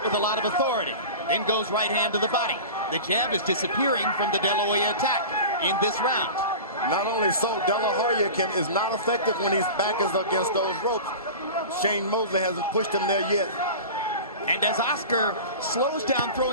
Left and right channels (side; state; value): both; inverted; correlation -0.33